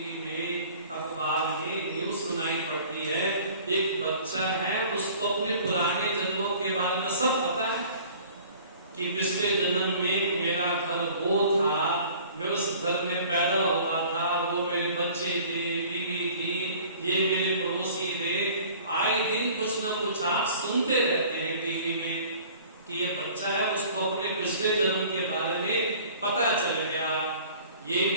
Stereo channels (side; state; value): both; inverted; correlation -0.49